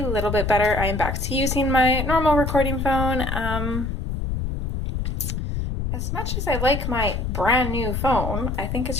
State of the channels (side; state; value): left; noise; rumble, 2 dB below the sound